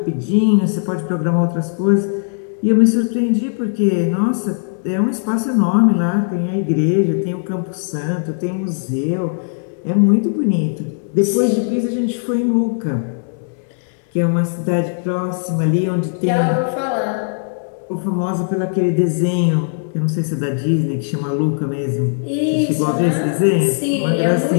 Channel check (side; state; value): right; silent; digital silence